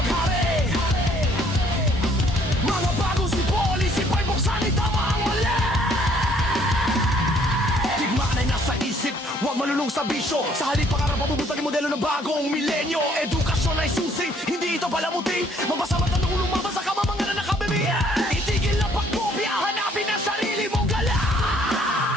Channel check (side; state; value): both; normal; correlation 0.62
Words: Mga bagong sipoli, sipay buksan, itama ang mali. Digmaan ay nasa isip, huwag malulong sa bisyo. Sa halip pangarap, mabubutang yung modelo ng bagong milenyo. Edukasyon ay susi, hindi ito palamuti. Mabasa mata nung lumabas sa kamamangan na nakabimi. Itigil ang pagkopya, hanapin ang sarili mong galaw.